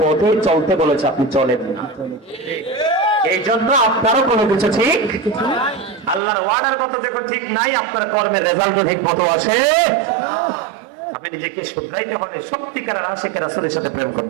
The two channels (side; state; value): left; drops out; at 6.2 s